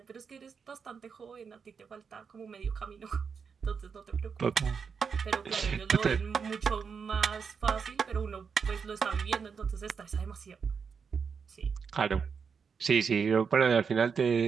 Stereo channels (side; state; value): left; quieter; 6.0 dB